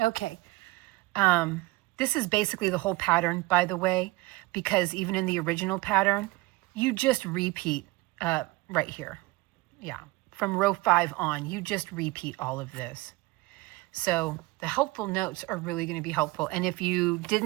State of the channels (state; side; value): quieter; left; 21.8 dB